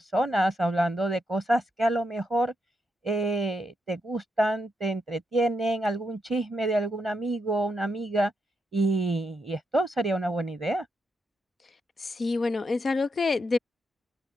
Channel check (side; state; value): both; normal; correlation 0.82